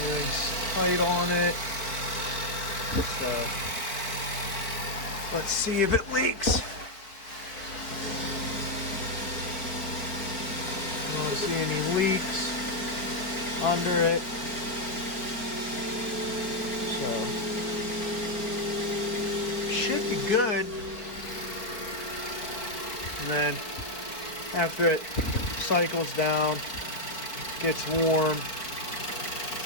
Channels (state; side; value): late; right; 4.5 ms